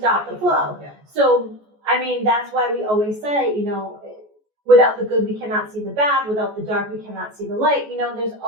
the flow. Yeah. So, I mean, that's why we always say, you know, without the good, we cannot see the bad. Without the dark, we cannot see the light. You know, there's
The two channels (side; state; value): left; late; 14 ms